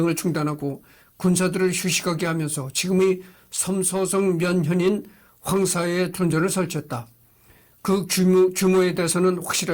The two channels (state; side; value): identical; both; correlation 1.00